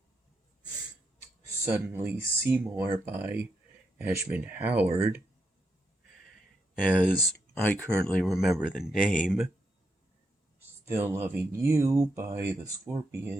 Suddenly Seymour by Ashman Howard, as I currently remember the name, Still Loving You by the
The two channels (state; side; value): normal; both; correlation 0.81